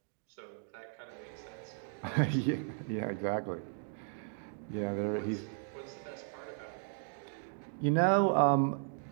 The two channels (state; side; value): silent; left; 54 dB below the other